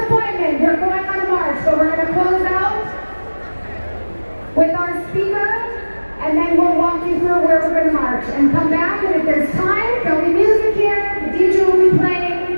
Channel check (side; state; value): both; inverted; correlation -1.00